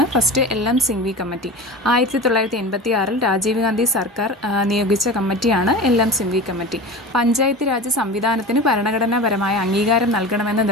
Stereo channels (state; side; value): normal; both; correlation 0.31